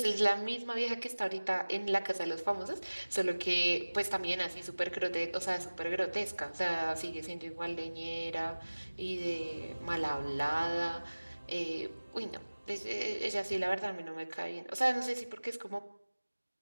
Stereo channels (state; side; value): inverted; both; correlation -1.00